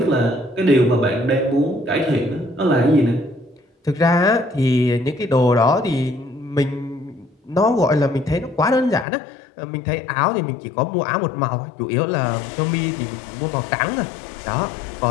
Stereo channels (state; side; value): drops out; right; at 9.1 s